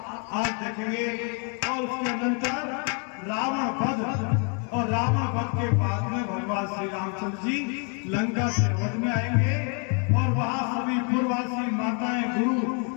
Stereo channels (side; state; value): right; quieter; 38.4 dB